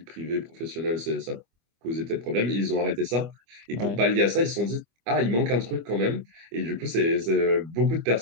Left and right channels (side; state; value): left; late; 25 ms